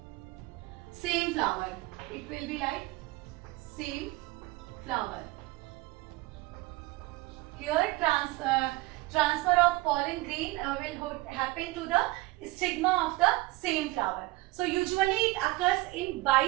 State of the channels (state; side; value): quieter; left; 20.5 dB